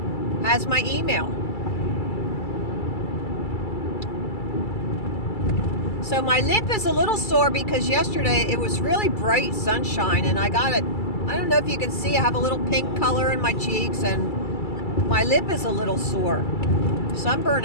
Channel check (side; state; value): right; late; 2.3 ms